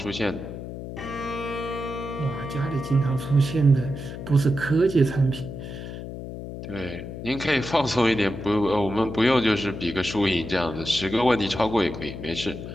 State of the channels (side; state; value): left; noise; hum, 9 dB below the sound